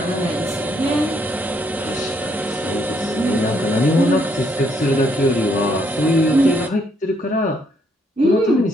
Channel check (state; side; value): normal; both; correlation 0.71